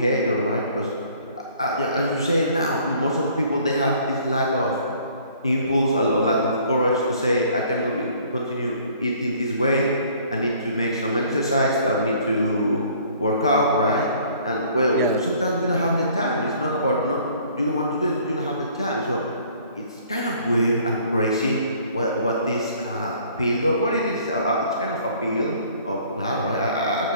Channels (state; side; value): inverted; both; correlation -0.56